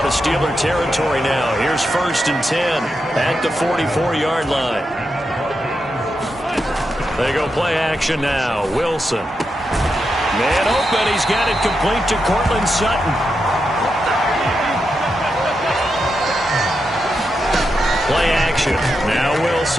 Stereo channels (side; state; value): both; normal; correlation 0.86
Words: of Steeler territory now. Here's 1st and 10 at the 44-yard line. They go play action now. Wilson. Man open. He's got it complete to Cortland Sutton. Play action. Now